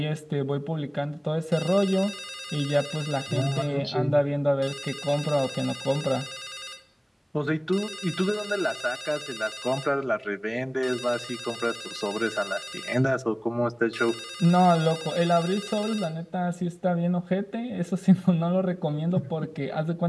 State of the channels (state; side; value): identical; both; correlation 1.00